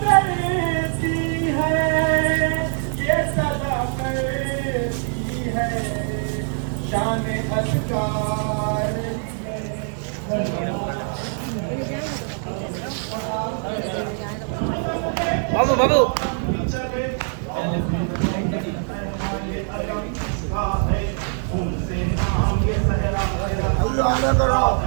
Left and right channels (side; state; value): left; silent; 57 dB below the other